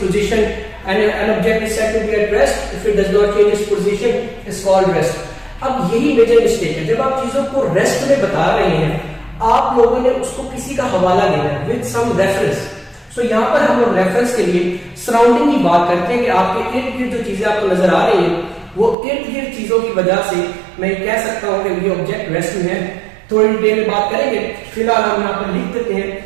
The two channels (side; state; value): left; drops out; at 18.9 s